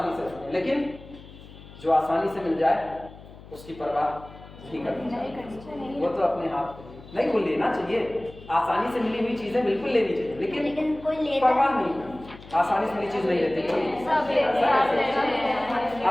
से रखते हैं, लेकिन जो आसानी से मिल जाए उसकी परवाह नहीं करनी चाहिए, वो तो अपने हाथ नहीं, वो लेना चाहिए। आसानी से मिली हुई चीजें बिल्कुल लेनी चाहिए, लेकिन परवाह नहीं करनी। आसानी से मिली चीज नहीं लेती कोई।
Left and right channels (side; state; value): left; noise; hum, 19 dB below the sound